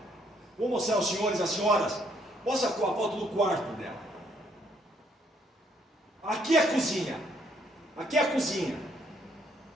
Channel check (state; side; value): normal; both; correlation 0.69